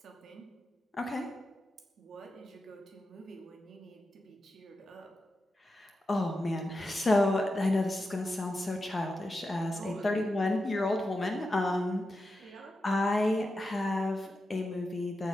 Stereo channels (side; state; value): both; normal; correlation 0.89